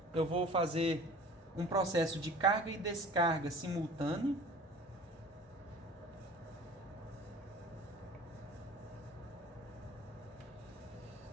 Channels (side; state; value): both; normal; correlation 0.44